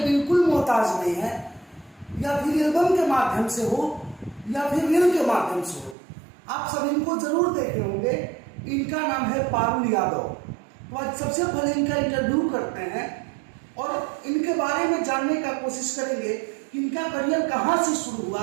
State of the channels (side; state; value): left; drops out; at 6.0 s